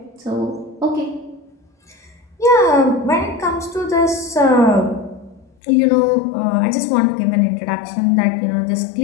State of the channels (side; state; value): right; drops out; at 5.5 s